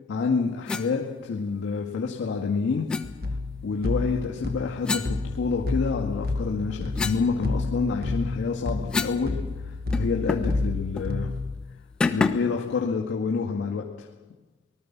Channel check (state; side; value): quieter; right; 3.9 dB